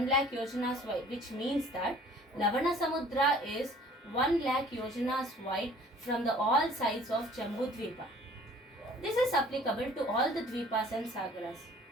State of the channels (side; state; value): both; normal; correlation 0.52